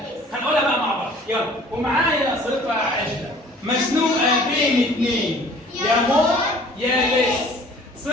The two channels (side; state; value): both; normal; correlation 0.51